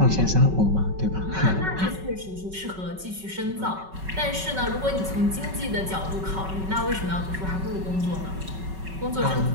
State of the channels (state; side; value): late; left; 5.3 ms